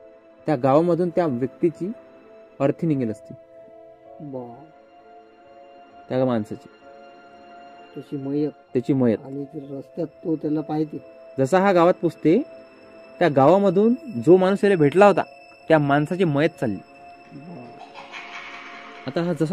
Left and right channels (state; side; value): identical; both; correlation 1.00